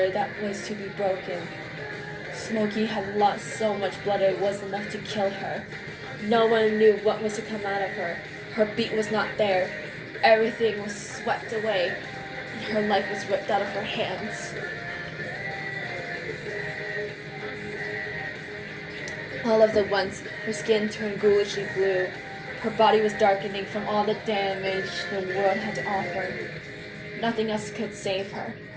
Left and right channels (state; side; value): identical; both; correlation 1.00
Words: that was to be broken. Smokey had lost so much blood it was enough to kill her. No one knew what was to come out of her. Her beat was not there. Everything was swept away, and her life was ripped out of her hands. All of the once, her skin turned ghoulishly blue. Her body was darkening from all the damage the world had to offer. Nothing else could save her.